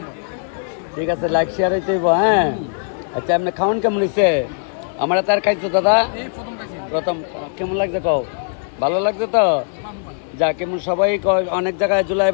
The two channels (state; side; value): silent; right; digital silence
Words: ঠিক আছে, লাইক শেয়ার হইতে হইব। হ্যাঁ আচ্ছা, আপনি খাওয়ান কেমন হয়েছে? আমরা তার খাইছো দাদা প্রথম, কেমন লাগছে কও? ভালো লাগছে তো? যা কেমন সবাই অনেক জায়গায়